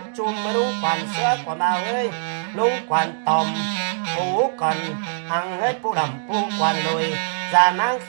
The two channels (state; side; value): silent; left; digital silence